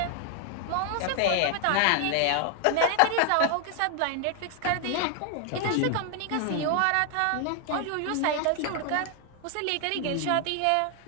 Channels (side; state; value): both; different; correlation 0.00